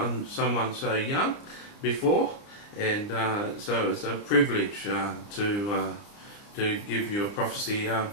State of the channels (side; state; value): right; late; 29 ms